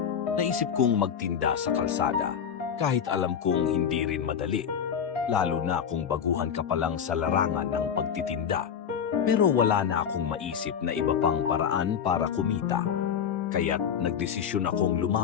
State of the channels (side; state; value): right; quieter; 7.9 dB